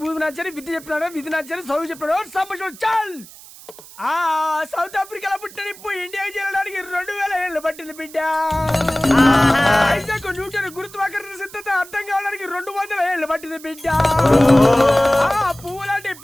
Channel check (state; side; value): noise; right; hiss, 19 dB below the sound